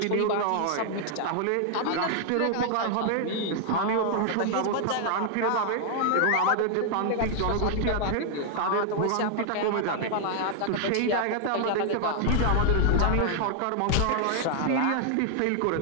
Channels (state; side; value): different; both; correlation -0.01